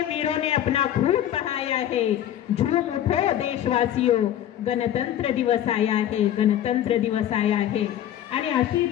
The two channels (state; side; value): quieter; right; 11.3 dB